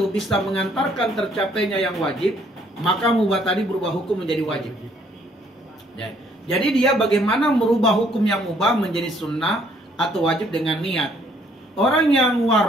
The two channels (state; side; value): normal; both; correlation 0.65